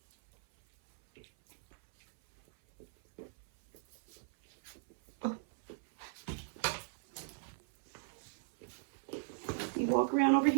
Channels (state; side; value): silent; left; 53 dB below the other